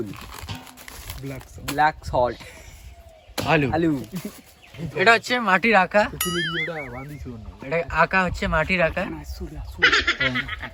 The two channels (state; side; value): identical; both; correlation 1.00